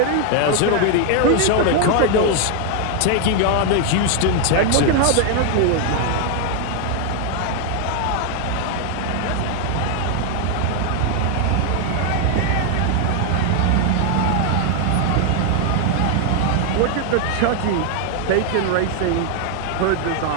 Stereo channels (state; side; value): different; both; correlation 0.00